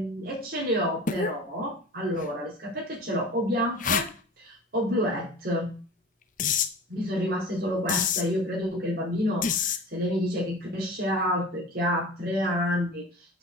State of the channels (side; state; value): both; normal; correlation 0.37